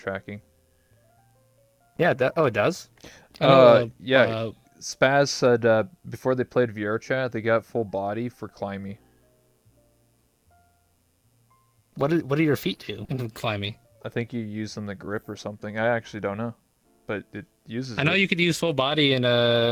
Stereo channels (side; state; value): both; identical; correlation 1.00